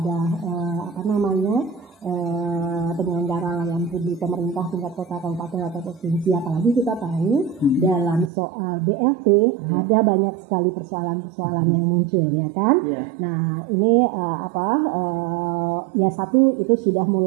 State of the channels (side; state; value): left; drops out; at 8.3 s